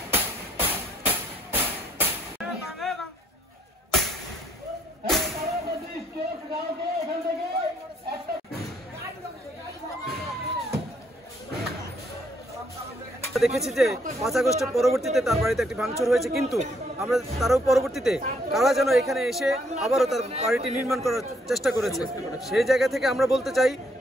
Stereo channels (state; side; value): normal; both; correlation 0.69